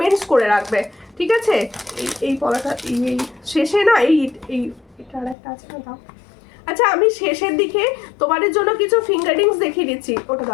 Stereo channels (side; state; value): right; drops out; at 5.4 s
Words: করে রাখবে, ঠিক আছে? এই পড়াটা এই শেষে না, এটা আর একটা আছে না, দাও। আচ্ছা আমি শেষের দিকে তোমাদের জন্য কিছু ফিঙ্গারিংস দেখিয়ে দিচ্ছি, ওটা